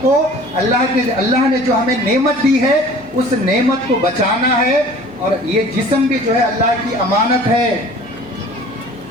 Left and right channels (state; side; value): noise; left; hum, 28 dB below the sound